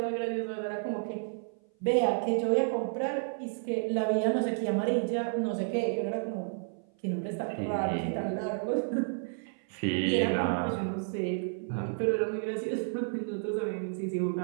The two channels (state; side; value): silent; left; 55 dB below the other